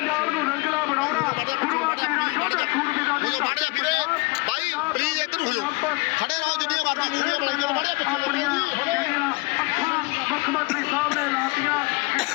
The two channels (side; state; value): right; quieter; 26.0 dB